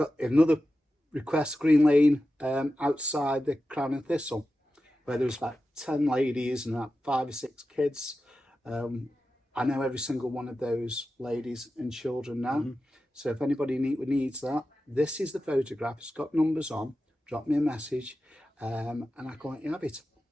another request, Green Lane, outside the Crown and Thistle, where there was about 10 ladies and about 5 or 6 kids. I know every single one of those ladies and children now. So if anybody needs that, this is the photograph. It's got numbers on. Drop me a message, and I can let you have it.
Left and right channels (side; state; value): both; normal; correlation 0.92